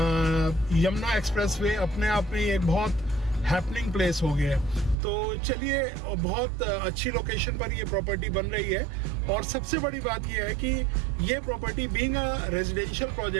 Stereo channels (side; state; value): left; drops out; at 5.0 s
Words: यमुना एक्सप्रेसवे अपने आप में एक बहुत हैपनिंग प्लेस हो गया है। तो चलिए, बहुत अच्छी लोकेशन पर ये प्रॉपर्टी बन रही है और सबसे बड़ी बात ये है कि ये property being a residential